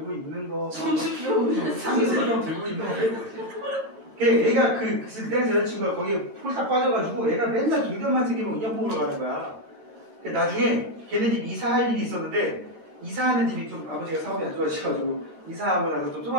있는 거, 상수병 들고 있는 거. 얘가 그때 여자친구가 거기에 폴딱 빠져가지고 얘가 맨날 동전만 생기면 인형 먹으러 가는 거야. 나중에 걔네 집 이사할 일이 있었는데 이사하는 집이 좀 아버지가 사업이 안 좋아지셔가지고 이사하고 나서 좀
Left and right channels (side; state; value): left; late; 9.1 ms